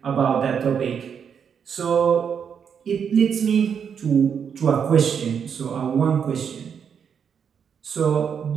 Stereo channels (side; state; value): left; quieter; 7.3 dB